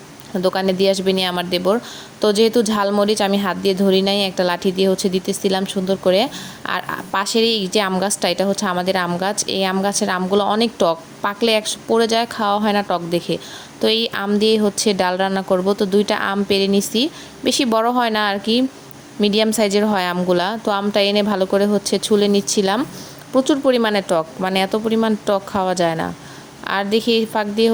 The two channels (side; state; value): both; identical; correlation 1.00